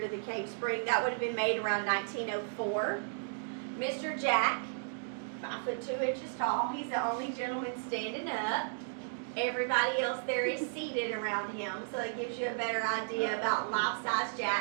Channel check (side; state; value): left; silent; digital silence